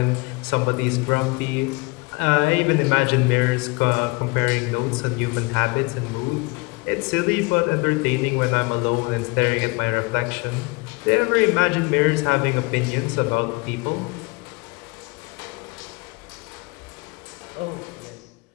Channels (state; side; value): quieter; right; 27.1 dB